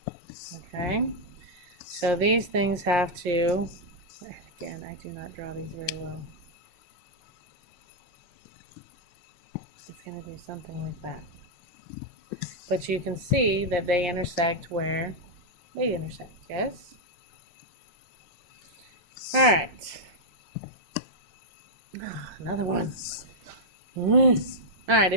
Okay, so these things have to, again, I do not draw these very well. It's going to do something like that. But you can see that they intersect where they intersect, yes? Alright. Another one. Alright,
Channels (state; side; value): late; left; 5.7 ms